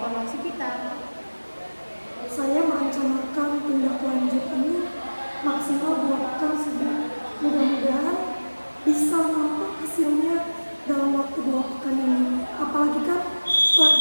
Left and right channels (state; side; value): inverted; both; correlation -1.00